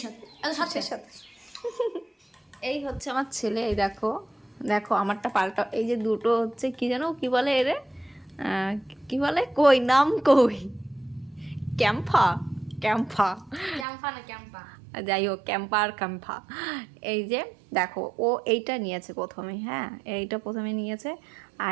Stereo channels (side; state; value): left; drops out; at 13.9 s